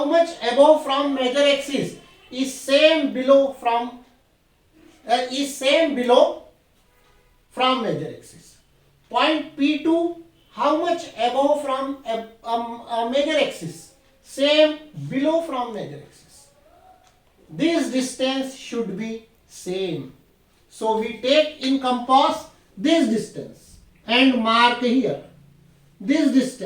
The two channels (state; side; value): identical; both; correlation 1.00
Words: much above from major axis, is same below from major axis. Point P2, how much above from major axis, same below from major axis. This distance should be same. So we take in compass this distance and mark here, this